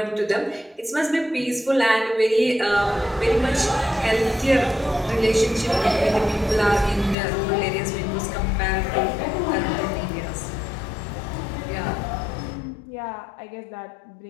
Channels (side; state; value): right; drops out; at 7.2 s